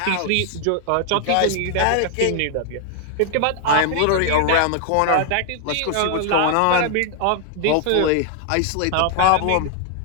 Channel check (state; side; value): different; both; correlation 0.00